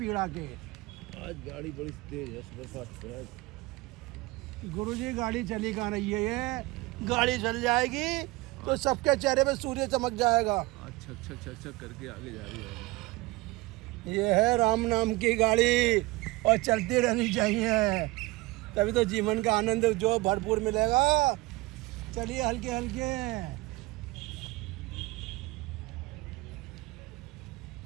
के। आज गाड़ी बड़ी तेज है, सुपरफास्ट है। गुरुजी, गाड़ी चली कहाँ रही है? ये गाड़ी चल जाएगी तो सबके चेहरे पे सूर्य चमक जाएगा। अच्छा अच्छा अच्छा अच्छा करके आगे जा रही है। ये है राम नाम की गाड़ी और चलती रहनी चाहिए, तभी तो जीवन का आनंद जो भरपूर मिलेगा। चलिए हल्के हल्के।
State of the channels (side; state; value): left; quieter; 21.5 dB